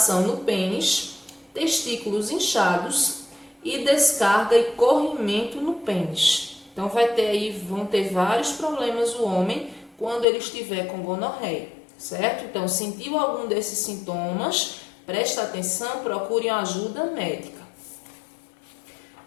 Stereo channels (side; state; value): right; drops out; at 10.2 s